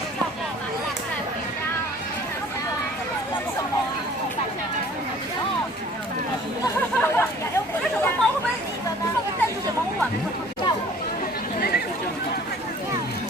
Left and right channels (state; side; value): normal; both; correlation 0.51